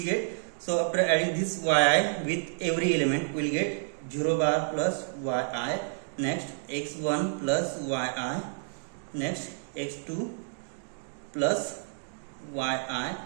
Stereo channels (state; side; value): silent; left; digital silence